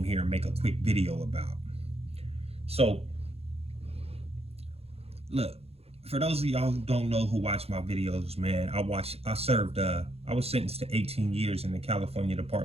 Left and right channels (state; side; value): late; left; 0.29 ms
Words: here and make a quick video about. So, look, for those of y'all who don't know who watch my videos, man, I was sentenced to 18 years in the California